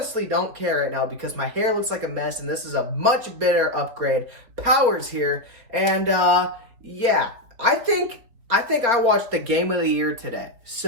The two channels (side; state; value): left; late; 4.4 ms